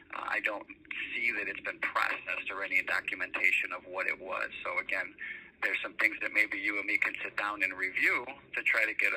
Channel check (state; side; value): identical; both; correlation 1.00